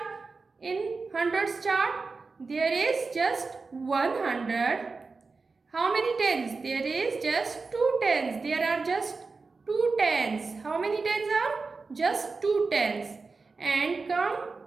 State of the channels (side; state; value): left; quieter; 4.2 dB